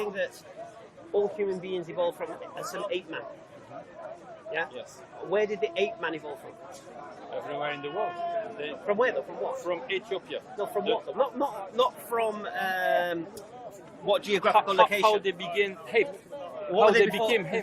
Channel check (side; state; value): both; identical; correlation 1.00